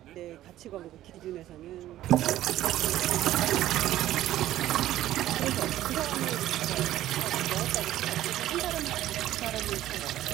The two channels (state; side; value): quieter; left; 13.8 dB